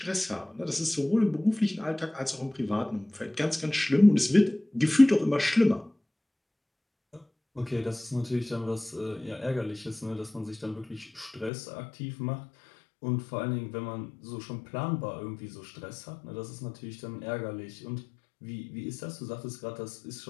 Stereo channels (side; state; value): right; drops out; at 11.5 s